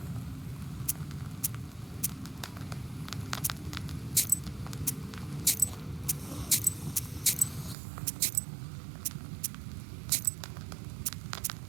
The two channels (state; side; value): drops out; left; at 7.8 s